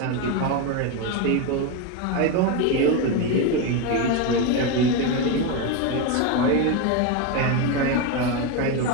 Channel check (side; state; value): both; different; correlation 0.03